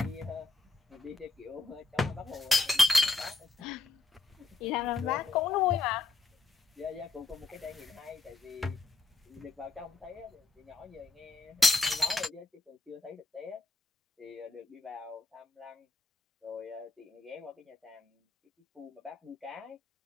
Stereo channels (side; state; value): right; quieter; 3.5 dB